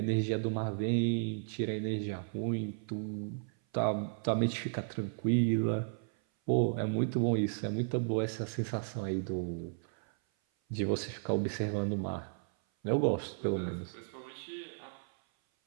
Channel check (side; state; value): left; silent; 55 dB below the other